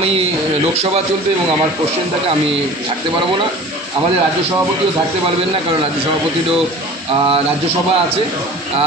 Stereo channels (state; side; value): normal; both; correlation 0.42